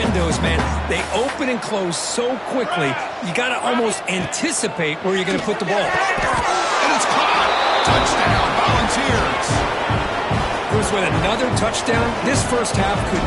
man. They open and close so quickly, you got to almost anticipate where you're going to put the ball. And it's caught. Touchdown, Volunteers. Bruce, with another touchdown, this first half could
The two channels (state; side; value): identical; both; correlation 1.00